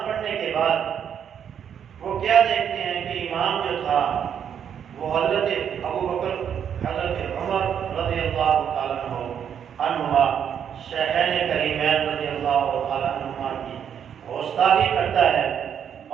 پڑھنے کے بعد وہ کیا دیکھتے ہیں کہ امام جو تھا وہ حضرت ابو بکر، حضرت عمر رضی اللہ تعالیٰ عنہما، شیخین کریمین رضی اللہ تعالیٰ عنہما کی گستاخی کرتا ہے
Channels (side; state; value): left; quieter; 8.5 dB